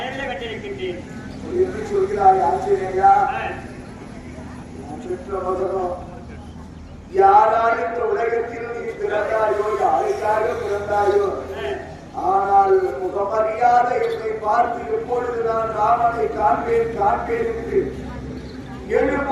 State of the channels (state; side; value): identical; both; correlation 1.00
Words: கண்டிருக்கின்றேன் என்று சொல்கிறாய் ஆச்சரியா. யாரால் இந்த உலகத்தில் நீ பிறந்தாயோ, யாருக்காக பிறந்தாயோ, ஆனால் முகமறியாத என்னை பார்த்து எப்பொழுது நான் ராமனை காண்பேன் காண்பேன் என்று